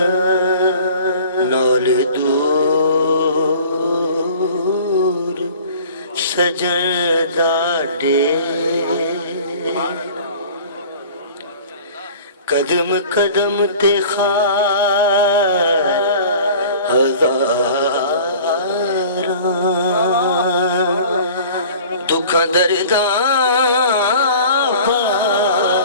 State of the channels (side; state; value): both; inverted; correlation -0.45